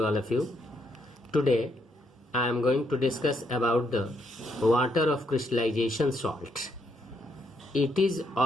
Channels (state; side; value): normal; both; correlation 0.76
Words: all of you. Today I am going to discuss about the water of crystallization salt. It is